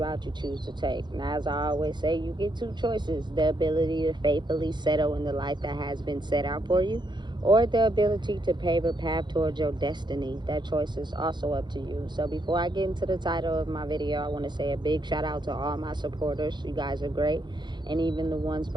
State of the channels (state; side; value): late; left; 0.21 ms